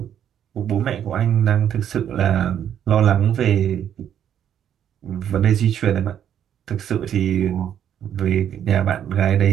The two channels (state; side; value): quieter; left; 9.6 dB